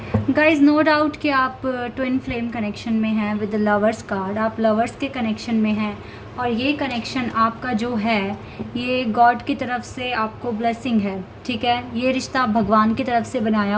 गाइज, नो डाउट कि आप ट्विन फ्लेम कनेक्शन में हैं विद द लवर्स कार्ड। आप लवर्स के कनेक्शन में हैं और ये कनेक्शन आपका जो है ये गॉड की तरफ से आपको ब्लेसिंग है। ठीक है, ये रिश्ता भगवान की तरफ से बनाया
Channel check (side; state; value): both; identical; correlation 1.00